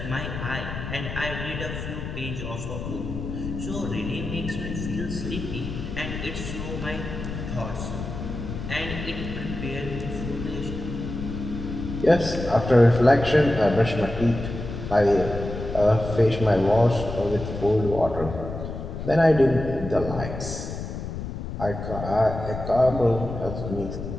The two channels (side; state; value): left; noise; rumble, 7 dB below the sound